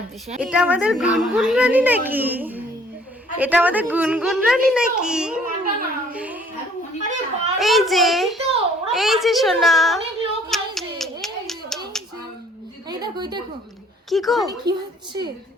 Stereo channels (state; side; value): normal; both; correlation 0.59